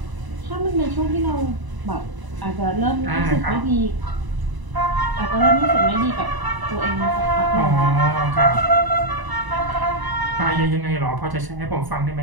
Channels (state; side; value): late; left; 1.0 ms